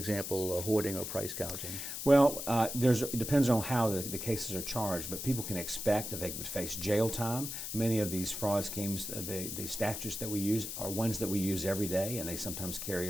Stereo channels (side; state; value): left; noise; hiss, 6 dB below the sound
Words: hoarding or price gouging? Well, it depends on how the cases are charged, but people can expect that they would face jail time. Many of these fraud schemes, the statutes that we use are ones that we use every day, and they sometimes carry